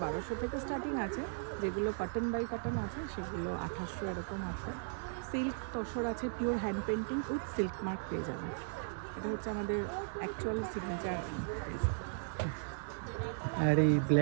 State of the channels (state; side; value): silent; left; digital silence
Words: থেকে স্টার্টিং আছে। যেগুলো কটন বাই কটন আছে সেগুলো 1800 এরকম আছে। সিল্ক তসর আছে pure hand painting with silk mark পেয়ে যাবেন। এটা হচ্ছে আমাদের অ্যাকচুয়াল সিগনেচার। আর এই